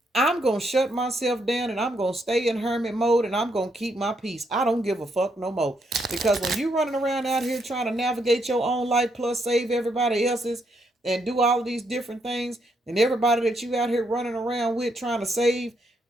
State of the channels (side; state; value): both; normal; correlation 0.77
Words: I'm going to shut myself down and I'm going to stay in hermit mode and I'm going to keep my peace. I don't give a fuck no more. Because when you running around out here trying to navigate your own life plus save everybody else's and do all of these different things, and everybody that you out here running around with trying to save,